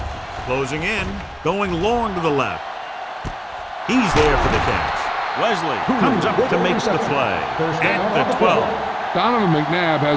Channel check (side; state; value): both; identical; correlation 1.00